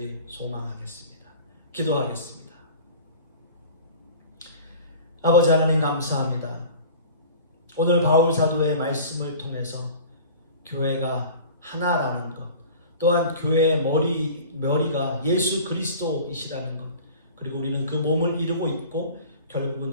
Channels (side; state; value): both; inverted; correlation -0.41